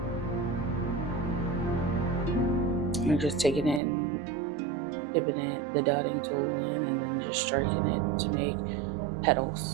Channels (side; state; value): left; drops out; at 3.8 s